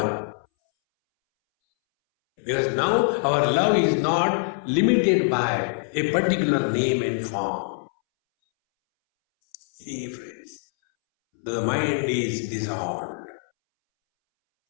Because now our love is not limited by a particular name and form. See, friends, the mind is dissolved.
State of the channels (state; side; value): silent; right; 62 dB below the other